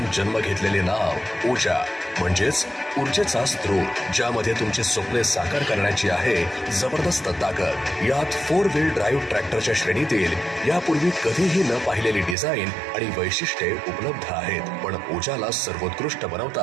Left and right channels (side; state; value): left; drops out; at 12.4 s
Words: जन्म घेतलेले नाव ओजा म्हणजेच ऊर्जेचा स्रोत, ज्यामध्ये तुमची स्वप्ने साकार करण्याची आहे जबरदस्त ताकद. यात 4 व्हील ड्राईव्ह ट्रॅक्टरच्या श्रेणीतील यापूर्वी कधीही न पाहिलेली डिझाईन आणि वैशिष्ट्ये उपलब्ध आहेत. पण ओजाला सर्वोत्कृष्ट